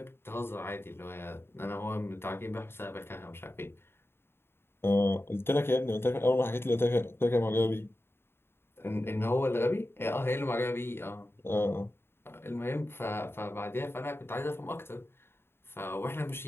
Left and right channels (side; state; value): right; late; 0.11 ms